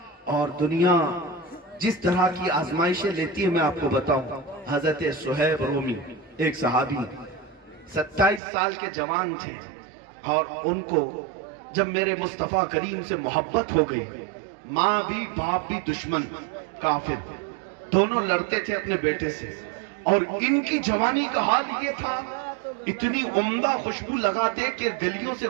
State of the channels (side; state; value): left; drops out; at 8.4 s